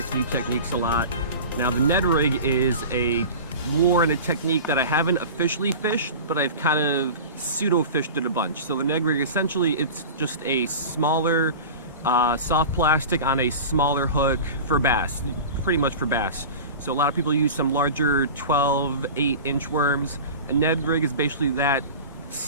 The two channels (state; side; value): inverted; both; correlation -0.33